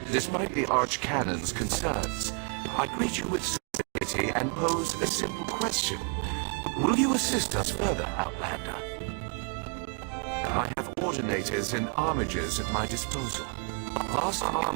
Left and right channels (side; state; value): left; quieter; 37.5 dB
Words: Despite the Archcanon's concerns, I greet you with civility and pose a simple question. Will you assist us further, Outlander? I have ordinators and armigers at my disposal. Vast